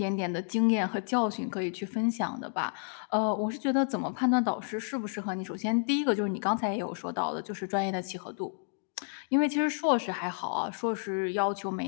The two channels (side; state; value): right; silent; 57 dB below the other